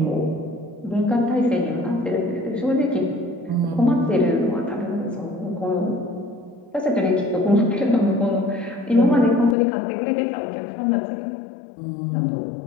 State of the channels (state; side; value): drops out; right; at 9.6 s